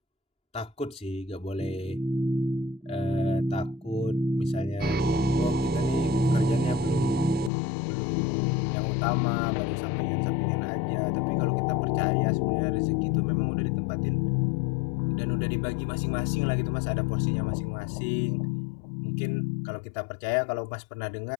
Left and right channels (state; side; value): drops out; right; at 7.5 s